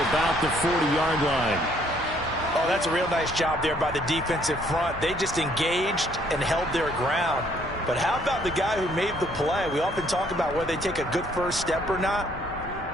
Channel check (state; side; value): normal; both; correlation 0.65